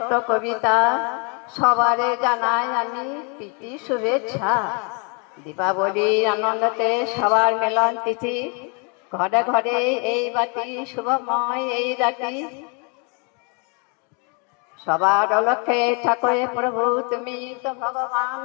কবিতা, সবারে জানাই আমি প্রীতি শুভেচ্ছা। দীপাবলির আনন্দতে সবার মিলন তিথি, ঘরে ঘরে এই বাতি শুভময় এই রাতি। সবার লক্ষ্যে ঠাকুরে প্রভু তুমি তো ভগবান,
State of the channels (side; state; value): right; quieter; 35.4 dB